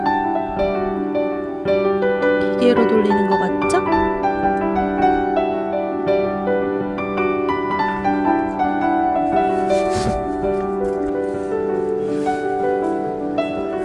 기계로 돌리는 거 맞죠?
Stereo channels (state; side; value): identical; both; correlation 1.00